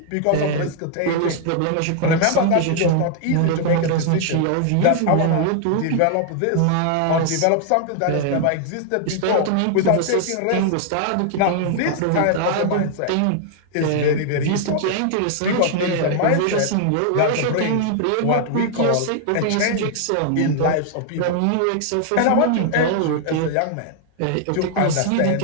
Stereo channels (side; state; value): both; different; correlation 0.00